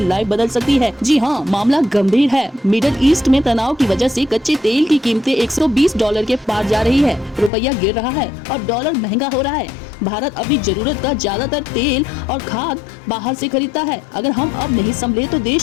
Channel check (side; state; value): right; drops out; at 7.5 s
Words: बदल सकती है। जी हाँ, मामला गंभीर है। मिडिल ईस्ट में तनाव की वजह से कच्चे तेल की कीमतें $120 के पार जा रही है। रुपया गिर रहा है और डॉलर महंगा हो रहा है। भारत अपनी जरूरत का ज्यादातर तेल और खाद बाहर से खरीदता है। अगर हम अब नहीं संभले तो